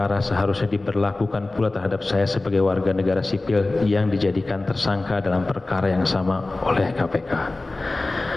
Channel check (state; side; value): quieter; right; 3.1 dB